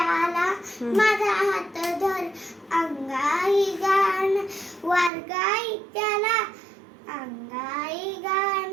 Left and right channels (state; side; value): drops out; left; at 5.1 s